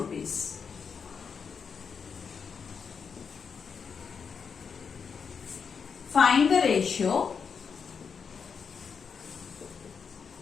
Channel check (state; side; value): quieter; right; 6.1 dB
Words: Find the ratio.